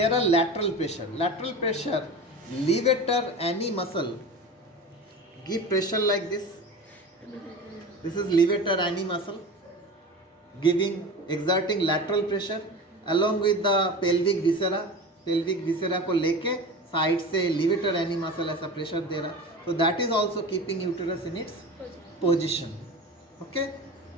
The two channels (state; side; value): normal; both; correlation 0.32